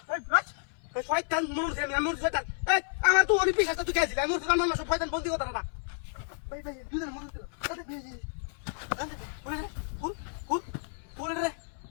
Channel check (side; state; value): right; silent; 57 dB below the other